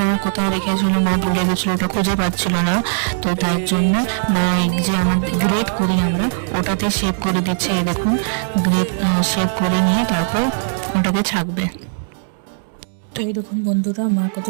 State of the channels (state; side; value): silent; left; digital silence